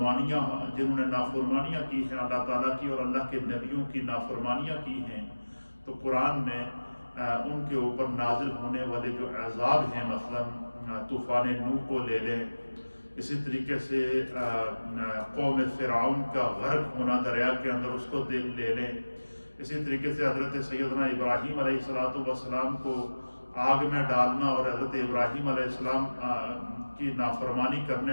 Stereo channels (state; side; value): inverted; both; correlation -1.00